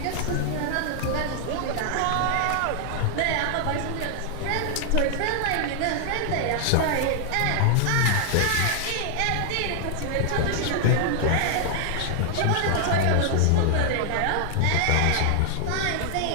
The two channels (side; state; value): both; different; correlation 0.00